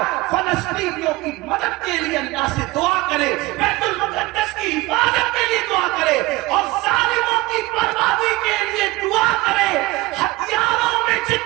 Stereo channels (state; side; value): quieter; left; 20.6 dB